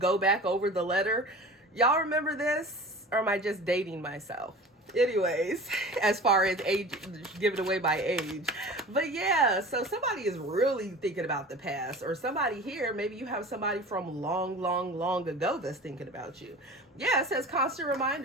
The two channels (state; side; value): normal; both; correlation 0.38